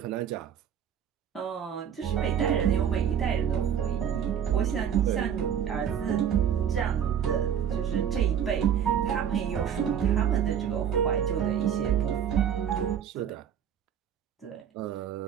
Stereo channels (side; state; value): left; quieter; 8.7 dB